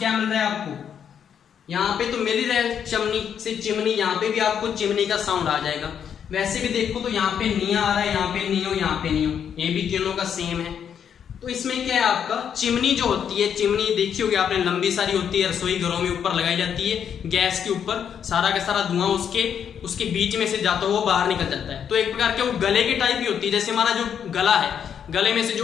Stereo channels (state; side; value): quieter; right; 8.2 dB